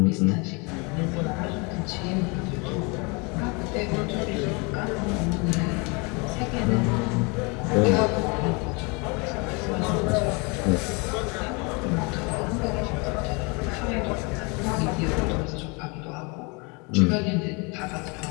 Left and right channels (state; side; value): quieter; right; 30.1 dB